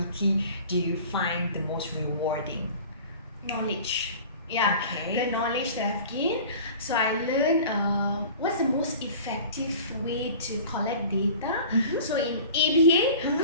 do you find the most rewarding? Knowledge. Yeah, Okay. the knowledge that I've gained. So I learned what's the most effective way to collect data. So in ABA,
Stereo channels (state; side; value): inverted; both; correlation -0.41